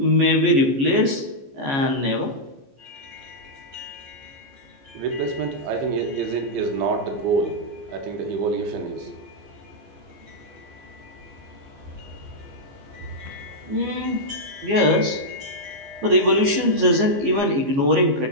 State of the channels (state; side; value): late; left; 15 ms